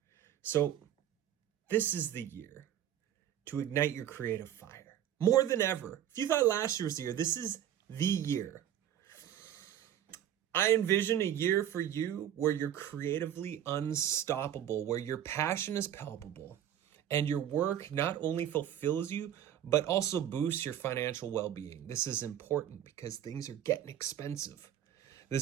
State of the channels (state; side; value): quieter; left; 10.8 dB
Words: So this is the year to ignite your creative fire. More than ever. If you thought last year was the year, this is the year. I envision a year for you where you're creatively unstoppable, where your passion is palpable, and your work not only fulfills you, but also boosts your financial well-being. This is important because things are getting expensive.